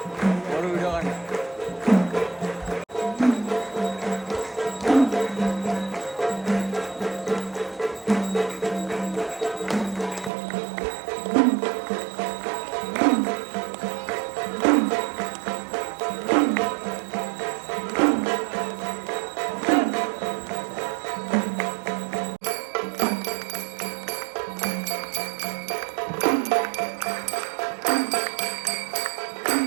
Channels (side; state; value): left; drops out; at 10.3 s